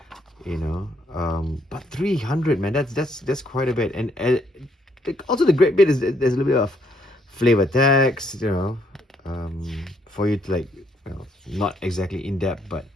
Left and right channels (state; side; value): normal; both; correlation 0.70